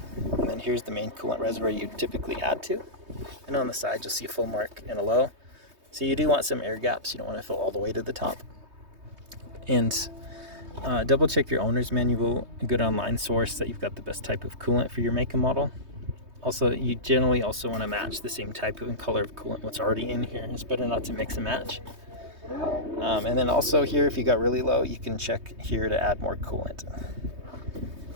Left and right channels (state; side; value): late; left; 3.2 ms